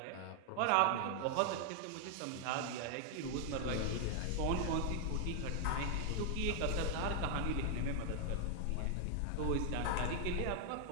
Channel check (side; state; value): both; different; correlation 0.00